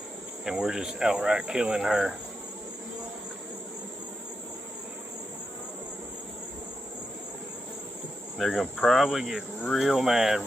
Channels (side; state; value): both; normal; correlation 0.86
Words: And we're just outright killing her. They're gonna probably get real mad